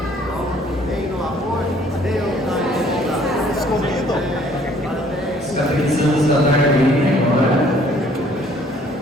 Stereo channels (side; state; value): both; normal; correlation 0.59